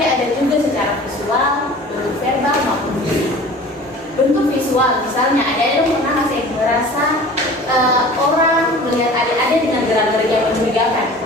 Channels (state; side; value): normal; both; correlation 0.43